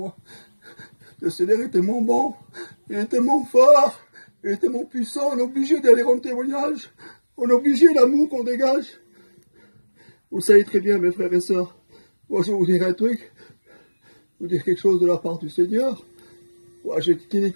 Le Seigneur est tellement bon, il est tellement fort, il est tellement puissant, on est obligé d'aller rendre témoignage. On est obligé l'amour qu'on dégage. Vous savez très bien, mes frères et sœurs, moi je vais vous dire un truc, vous dire quelque chose de la part du Seigneur. Moi,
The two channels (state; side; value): inverted; both; correlation -1.00